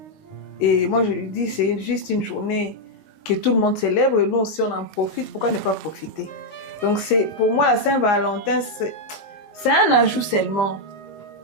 Et moi, je lui dis, c'est juste une journée que tout le monde célèbre et nous aussi, on en profite. Pourquoi ne pas profiter? Donc, pour moi, la Saint-Valentin, c'est un ajout seulement.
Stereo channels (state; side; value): late; right; 19 ms